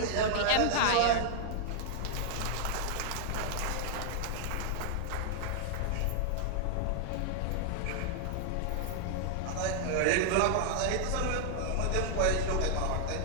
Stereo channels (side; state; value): both; different; correlation 0.00